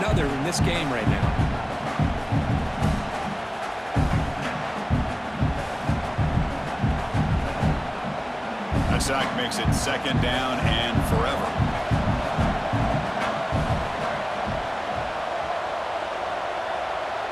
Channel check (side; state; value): both; identical; correlation 1.00